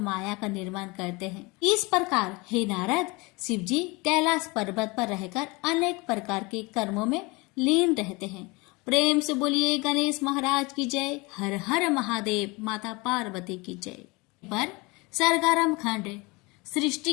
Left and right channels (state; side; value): quieter; right; 25.6 dB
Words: का निर्माण करते हैं। इस प्रकार हे नारद, शिव जी कैलाश पर्वत पर रहकर अनेक प्रकार के कर्मों में लीन रहते हैं। प्रेम से बोलिए गणेश महाराज की जय। हर हर महादेव, माता पार्वती की जय। पर सरगारम खंड